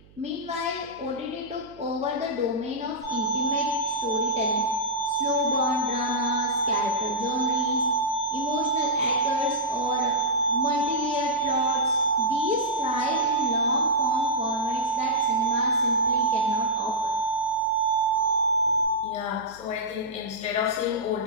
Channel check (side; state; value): right; noise; hum, 26 dB below the sound